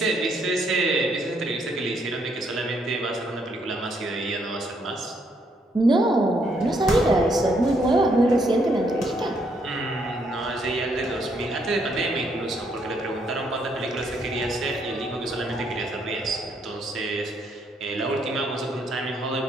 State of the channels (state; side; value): normal; both; correlation 0.72